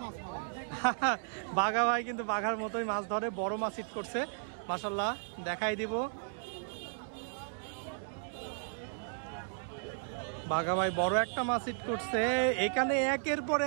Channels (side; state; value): left; silent; digital silence